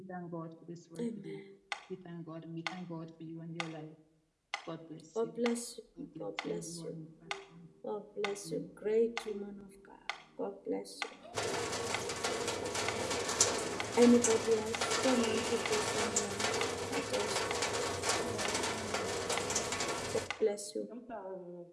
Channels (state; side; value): identical; both; correlation 1.00